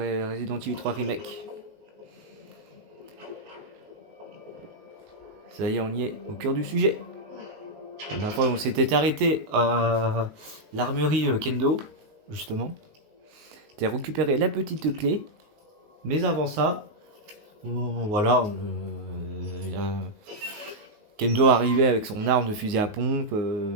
Evil 3 Remake. Ça y est, on y est, au cœur du sujet. La dernière fois, on s'était arrêté à l'armurerie Kendo, justement. T'as récupéré la petite clé. Mais avant ça, voilà, Kendo arrivait avec son arme de fusil à pompe,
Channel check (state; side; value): late; left; 19 ms